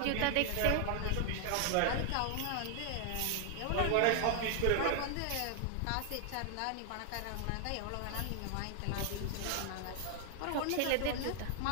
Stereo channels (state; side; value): different; both; correlation 0.00